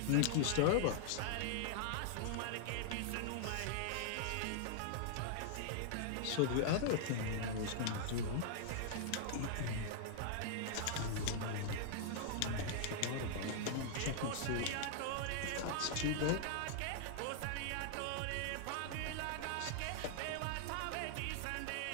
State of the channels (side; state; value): both; different; correlation -0.01